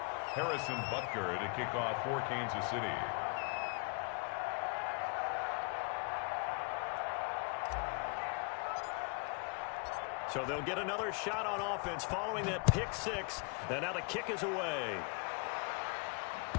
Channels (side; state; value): right; quieter; 35.7 dB